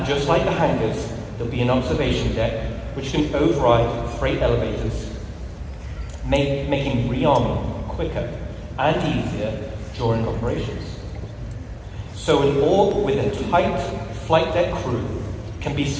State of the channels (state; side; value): identical; both; correlation 1.00